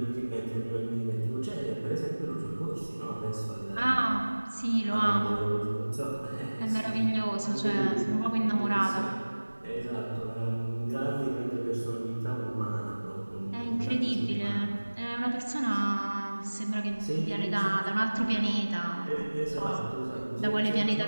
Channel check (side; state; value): both; inverted; correlation -1.00